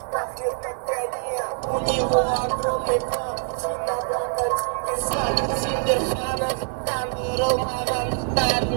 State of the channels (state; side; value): silent; left; 57 dB below the other